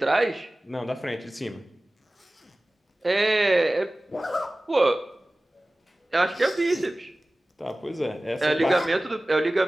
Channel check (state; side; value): normal; both; correlation 0.97